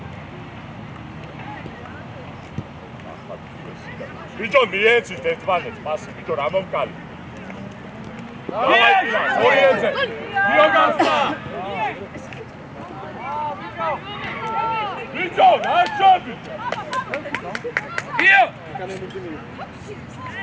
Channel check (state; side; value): identical; both; correlation 1.00